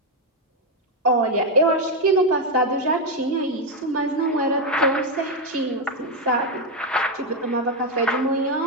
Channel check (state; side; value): normal; both; correlation 0.04